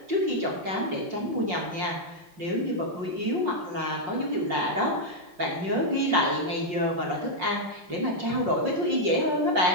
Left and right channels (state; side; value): late; left; 5.5 ms